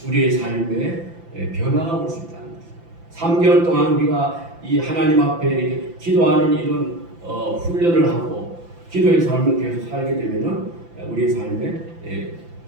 우리의 삶에 변화가 올 수 있다는 것입니다. 3개월 동안 우리가 이 하나님 앞에 기도하는 이런 훈련을 하고 기도의 삶을 계속 살게 되면은 우리의 삶에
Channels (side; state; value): left; late; 5.9 ms